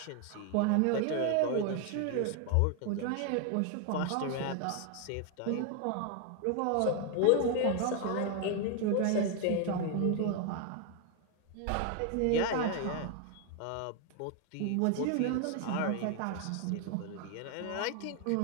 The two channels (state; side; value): different; both; correlation 0.01